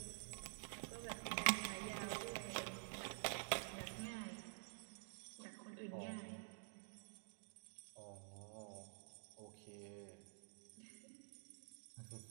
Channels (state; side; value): silent; left; digital silence